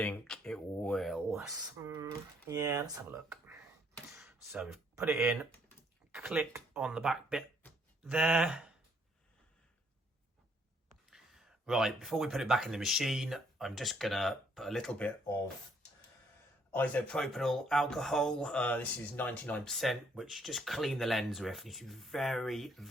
it will. Yeah, let's have a look. So we've put it in, click on the back bit there. Right, before we put it back in the machine, I'm just gonna put a little bit of isopropyl alcohol. This is 99%, which just clean the lens with. You should be very,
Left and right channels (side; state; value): both; normal; correlation 0.67